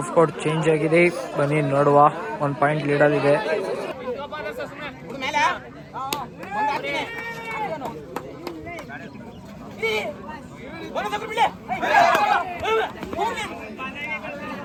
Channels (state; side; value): identical; both; correlation 1.00